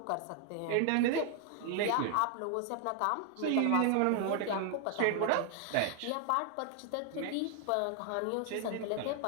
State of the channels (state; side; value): different; both; correlation 0.00